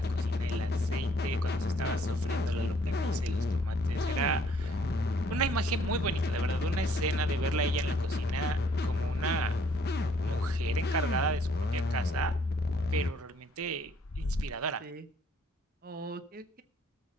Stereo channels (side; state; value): both; normal; correlation 0.63